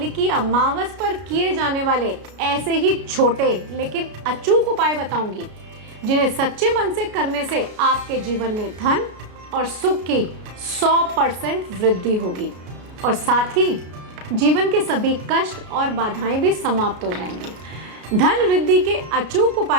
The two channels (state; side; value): late; left; 33 ms